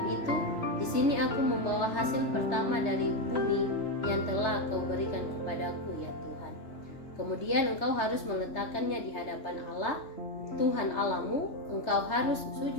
itu, di sini aku membawa hasil pertama dari bumi yang telah kau berikan kepadaku ya Tuhan. Kemudian engkau harus meletakkannya di hadapan Allah, Tuhan Allahmu. Engkau harus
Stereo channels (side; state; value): right; late; 3.3 ms